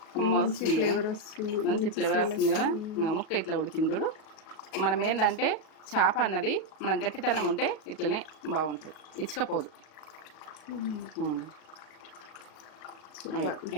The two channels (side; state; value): right; late; 37 ms